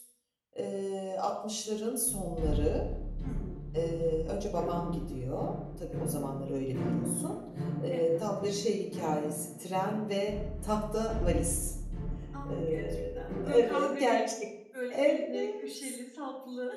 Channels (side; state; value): both; identical; correlation 1.00